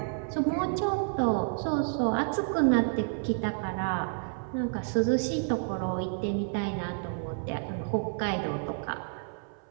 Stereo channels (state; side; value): silent; left; 58 dB below the other